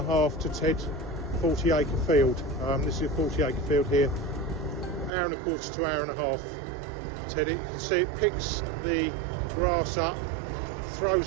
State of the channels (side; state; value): left; drops out; at 5.1 s